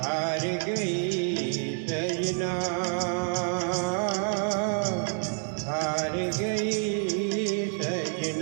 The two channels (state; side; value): silent; left; 55 dB below the other